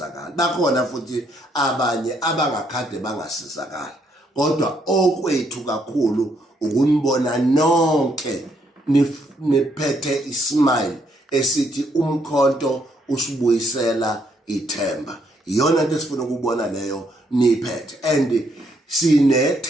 bakhona futhi abanye abangakhade bangasizakala. Kodwa okwethu kakhulu ukunibona nonke niphethe ismile esithi umkhonto usibuyisela ithemba. Iyona into esifuna ukubona leyo niphethe, and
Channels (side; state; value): both; normal; correlation 0.72